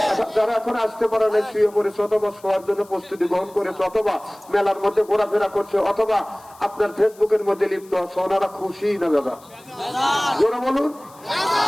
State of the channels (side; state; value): left; noise; hiss, 26 dB below the sound